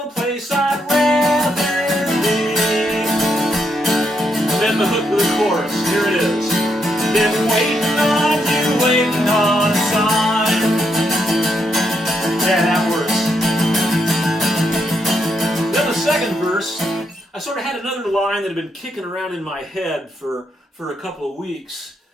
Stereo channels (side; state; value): both; normal; correlation 0.78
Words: place I'd rather be. And then the hook of the chorus, here it is. Been waiting on you, waiting on a sign. Yeah, that works. Then the second verse, I sort of had another line that had been kicking around in my head for a couple of weeks.